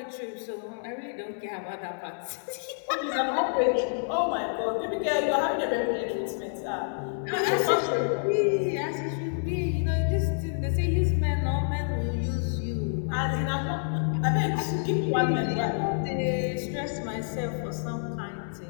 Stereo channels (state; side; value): silent; right; 59 dB below the other